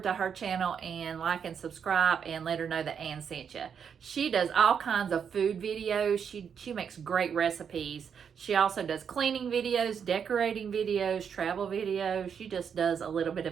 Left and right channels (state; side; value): quieter; left; 7.2 dB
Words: her channel and like and subscribe and let her know that Ann sent you. She does all kinds of food videos. She makes great recipes. She also does cleaning videos, decorating videos, travel videos. She just does a little bit